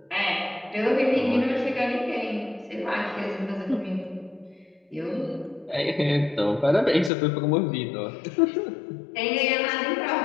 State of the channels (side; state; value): right; drops out; at 7.1 s